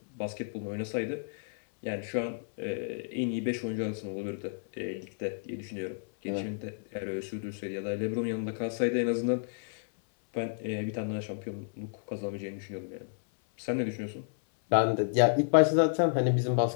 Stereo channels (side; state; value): right; silent; 57 dB below the other